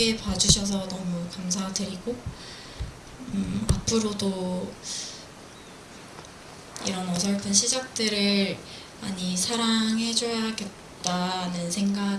봐주셔서 너무 감사드리고 앞으로도 이런 어설픈 시작들을 많이 사랑해줘야겠다는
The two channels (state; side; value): identical; both; correlation 1.00